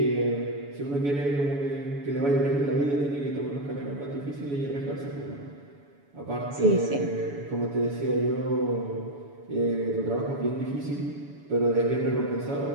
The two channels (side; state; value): left; late; 7.0 ms